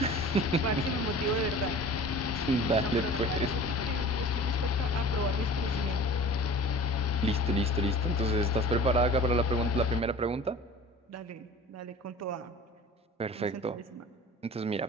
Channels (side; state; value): both; normal; correlation 0.41